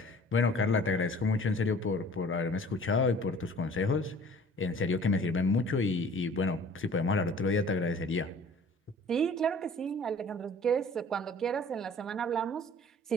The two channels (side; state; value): both; normal; correlation 0.49